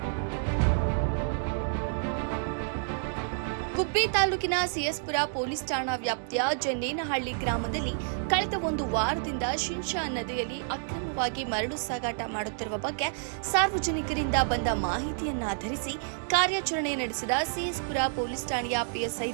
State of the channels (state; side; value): silent; left; digital silence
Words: ಗುಬ್ಬಿ ತಾಲೂಕಿನ ಸಿಎಸ್ಪುರ ಪೊಲೀಸ್ ಠಾಣಾ ವ್ಯಾಪ್ತಿಯ ಜನ್ನೇನಹಳ್ಳಿ ಗ್ರಾಮದಲ್ಲಿ ಕಳೆದ ಒಂದು ವಾರದಿಂದ ಶಿಂಷಾ ನದಿಯಲ್ಲಿ ಅಕ್ರಮವಾಗಿ ಮರಳು ಸಾಗಾಟ ಮಾಡುತ್ತಿರುವ ಬಗ್ಗೆ ಸಾರ್ವಜನಿಕರಿಂದ ಬಂದ ಮಾಹಿತಿಯನ್ನಾಧರಿಸಿ ಕಾರ್ಯಾಚರಣೆ ನಡೆಸಿದ ಸಿಎಸ್ಪುರ ಪೊಲೀಸ್ ಠಾಣೆಯ ಪಿಎಸ್ಐ